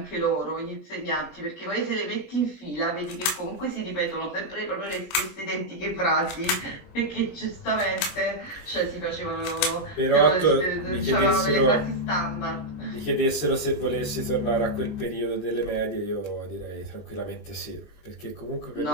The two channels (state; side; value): late; right; 20 ms